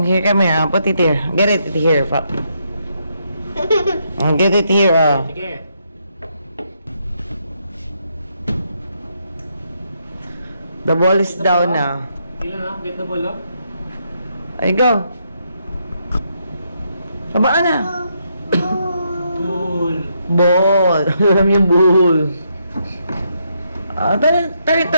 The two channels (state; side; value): inverted; both; correlation -0.77